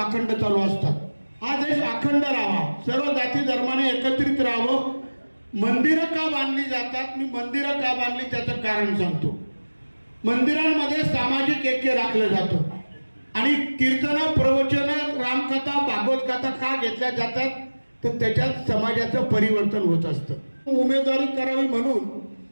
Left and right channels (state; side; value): inverted; both; correlation -1.00